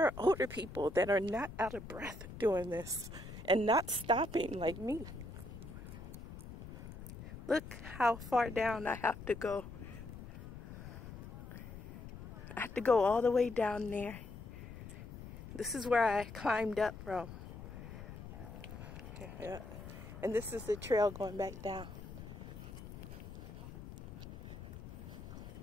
are older people that are not out of breath doing this and not stopping like me. Look how far down I have to go. I have to go all the way down there. This is where I climbed up from. Yeah. And this is the trail going back down.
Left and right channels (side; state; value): left; noise; rumble, 12 dB below the sound